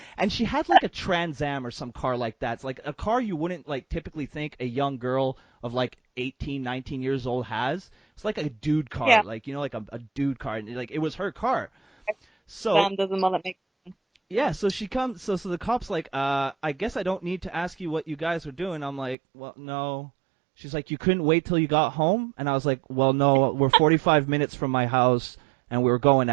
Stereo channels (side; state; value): left; drops out; at 19.2 s